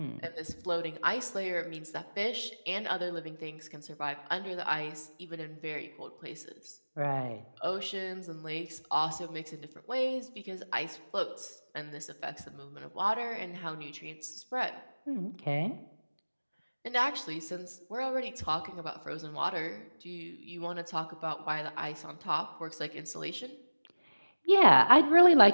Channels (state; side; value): inverted; both; correlation -1.00